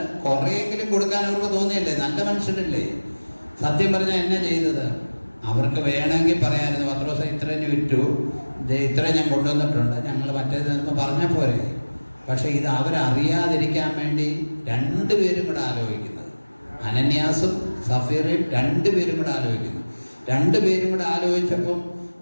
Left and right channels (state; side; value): inverted; both; correlation -1.00